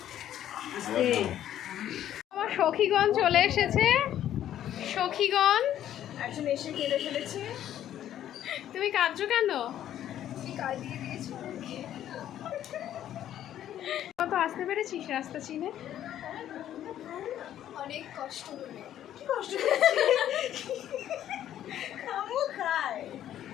আমার সখীগণ চলে এসেছে। সখীগণ একজন এসে কেঁদে ফেলেছে। তুমি কাঁদছো কেন? কত আসতে পেরেছিস রাস্তা চিনে? অনেক কষ্ট করে।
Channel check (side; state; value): right; quieter; 11.4 dB